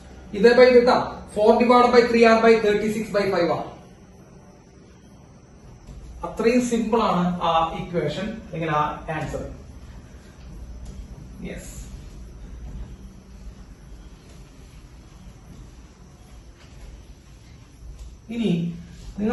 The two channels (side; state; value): both; identical; correlation 1.00